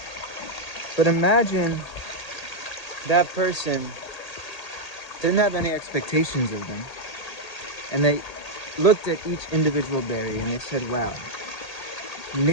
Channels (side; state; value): right; late; 1.8 ms